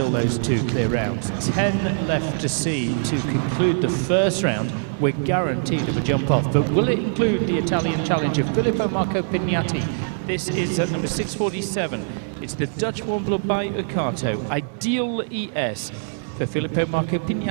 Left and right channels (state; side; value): silent; left; digital silence